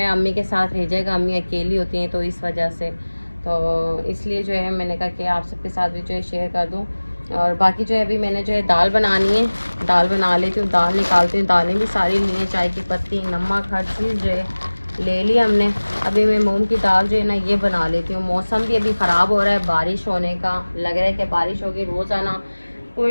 अम्मी के साथ रह जाएगा, अम्मी अकेली होती हैं, तो इस वजह से तो इसलिए जो है मैंने कहा कि आप सबके साथ भी जो है शेयर कर दूँ। और बाकी जो है अभी मैंने जो है दाल बनानी है, दाल बना लेती हूँ, दाल निकालती हूँ। दालें भी सारी ली हैं, चाय की पत्ती, नमक, हर चीज़ जो है ले ली हमने। अभी मैं मूंग की दाल जो है ना ये बना लेती हूँ। मौसम भी अभी ख़राब हो रहा है, बारिश होने का लग रहा है कि बारिश होगी। रोज़ाना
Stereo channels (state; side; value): inverted; both; correlation -1.00